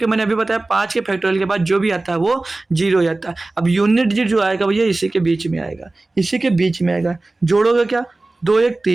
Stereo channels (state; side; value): quieter; left; 3.0 dB